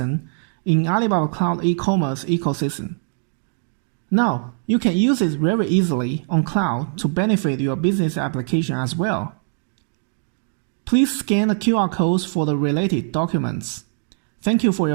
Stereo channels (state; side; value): silent; left; digital silence